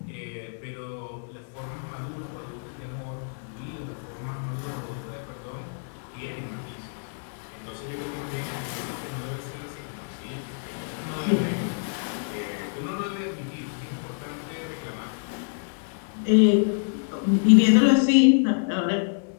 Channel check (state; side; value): silent; right; digital silence